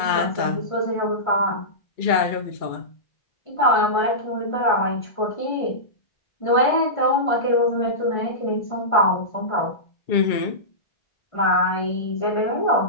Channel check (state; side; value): late; right; 1.5 ms